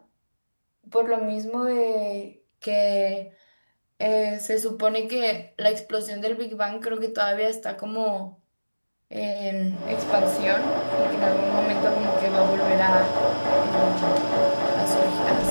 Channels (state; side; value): inverted; both; correlation -1.00